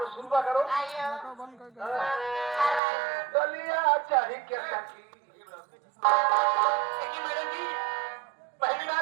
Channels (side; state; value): left; drops out; at 2.8 s